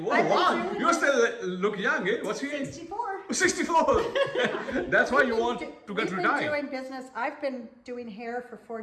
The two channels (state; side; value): identical; both; correlation 1.00